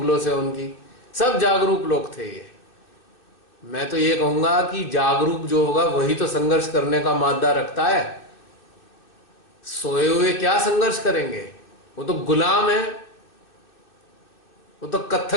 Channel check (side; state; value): right; late; 2.6 ms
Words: से उनकी। सब जागरूक लोग थे ये। मैं तो ये कहूंगा कि जागरूक जो होगा वही तो संघर्ष करने का मादा रखता है। सोए हुए क्या संघर्ष करेंगे? वो तो गुलाम है, वो तो